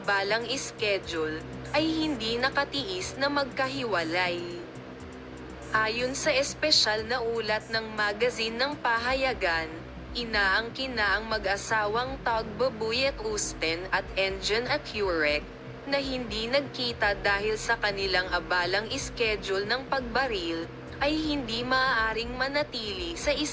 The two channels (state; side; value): identical; both; correlation 1.00